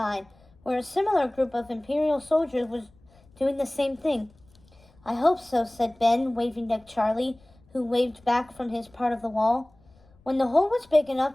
where a similar group of Imperial soldiers was doing the same thing. I hope so, said Ben, waving at Charlie, who waved back from his part of the wall. When the hole was big enough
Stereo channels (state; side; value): noise; left; rumble, 29 dB below the sound